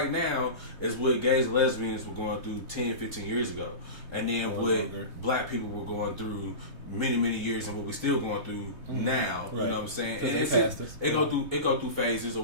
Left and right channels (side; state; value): left; late; 3.2 ms